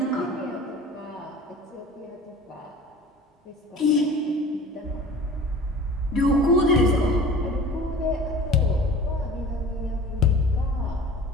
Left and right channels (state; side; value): normal; both; correlation 0.41